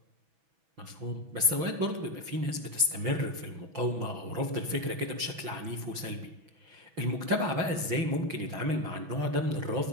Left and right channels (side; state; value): left; late; 6.1 ms